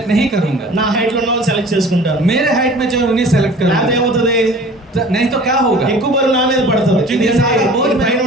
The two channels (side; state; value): both; normal; correlation 0.45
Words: नहीं करूंगा। నా హైట్ లో ఉన్న వాళ్ళని సెలెక్ట్ చేసుకుంటాను. मेरे हाइट में जो है उन्हें सेलेक्ट లేకపోతే करूंगा, ఏమవుతుంది? नहीं तो क्या होगा, ఎక్కువ బరువు నా మీద పడుతుంది. क्योंकि सारा बोझ పైన